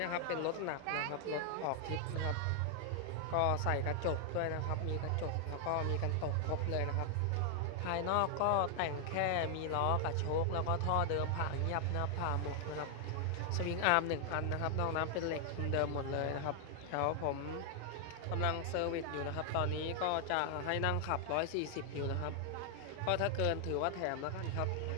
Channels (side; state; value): both; different; correlation 0.00